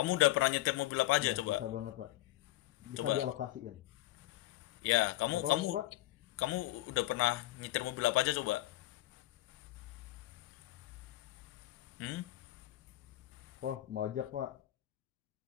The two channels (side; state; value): right; quieter; 16.4 dB